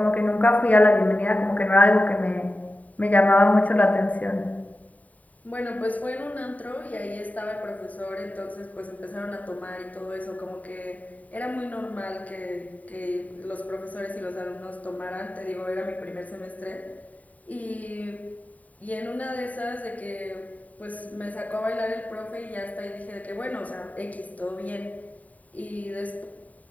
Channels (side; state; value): right; late; 0.071 ms